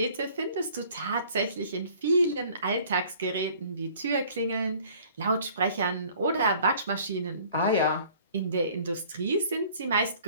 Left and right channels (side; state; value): both; inverted; correlation -0.53